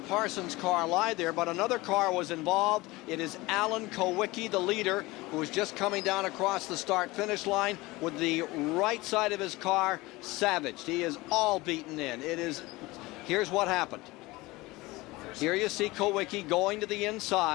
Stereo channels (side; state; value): right; quieter; 21.1 dB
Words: car lie there, but another car was involved. It is Alan Kowicki, the leader, who is just coming down across the start-finish line with the right side of his car savaged. He is all beaten in. Here's what happened. Here you see Kowicki going to the